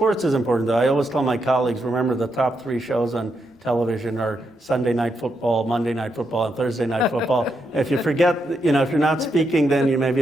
is important, though. I always tell my colleagues, remember the top 3 shows on television are Sunday Night Football, Monday Night Football, and Thursday Night Football. If you forget, if you're not speaking, then you may be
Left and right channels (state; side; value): normal; both; correlation 0.82